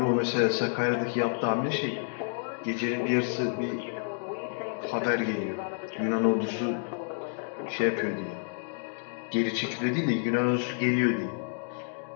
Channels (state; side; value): silent; right; digital silence